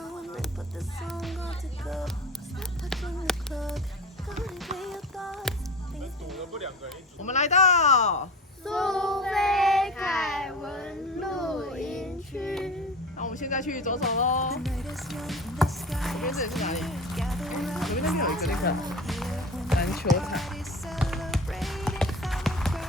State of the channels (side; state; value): both; normal; correlation 0.34